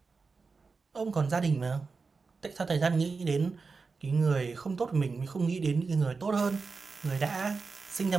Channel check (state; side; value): quieter; left; 4.5 dB